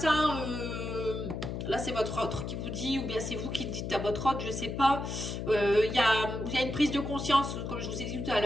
là c'est votre autre qui vous dit, ou bien c'est vous qui dites à votre autre, je ne sais pas, il y a une prise de conscience, comme je vous ai dit tout à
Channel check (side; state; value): left; noise; hum, 4 dB below the sound